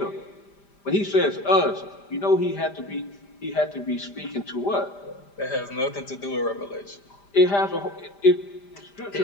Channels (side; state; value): right; late; 5.0 ms